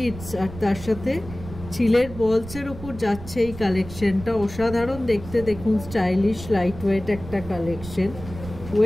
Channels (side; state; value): right; noise; rumble, 13 dB below the sound